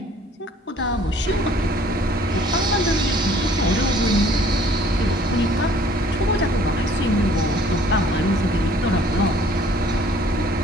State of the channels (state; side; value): normal; both; correlation 0.56